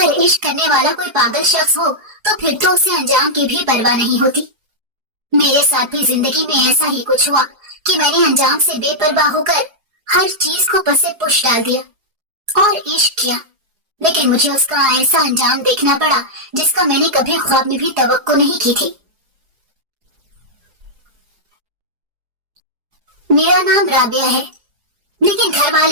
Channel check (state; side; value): late; left; 4.8 ms